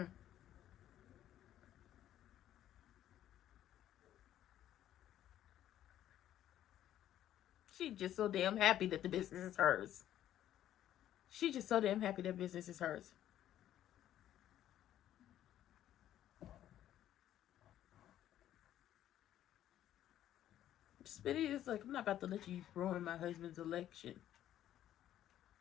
She's just so damn happy that the business is hers. She's just so damn happy that business is hers. Smitty is like, I'm not about to let you ruin my husband's election.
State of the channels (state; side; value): quieter; right; 11.9 dB